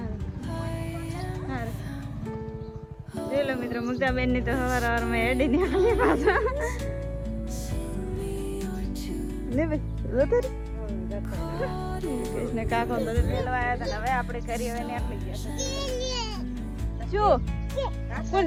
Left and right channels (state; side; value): identical; both; correlation 1.00